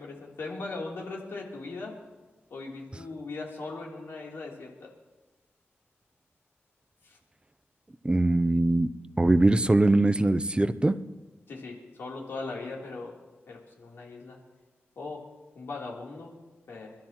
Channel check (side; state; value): both; normal; correlation 0.95